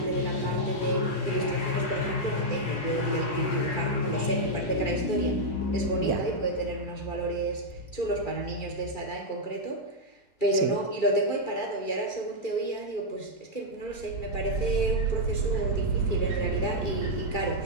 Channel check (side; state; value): right; late; 2.3 ms